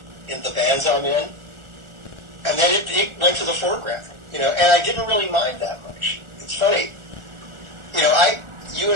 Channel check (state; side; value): late; left; 1.4 ms